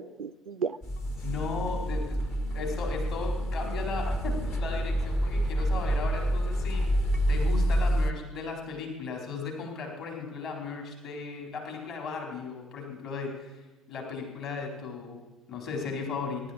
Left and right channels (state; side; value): normal; both; correlation 0.79